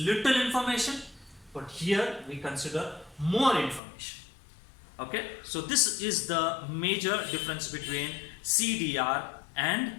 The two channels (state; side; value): drops out; right; at 3.8 s